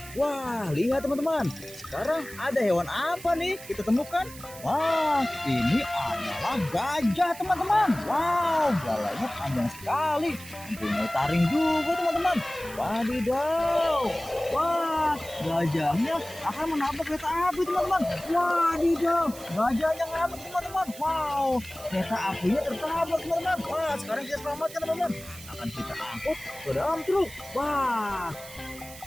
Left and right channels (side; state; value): right; noise; hiss, 16 dB below the sound